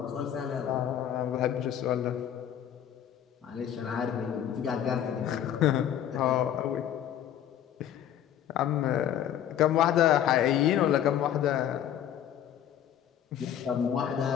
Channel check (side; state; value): right; quieter; 10.3 dB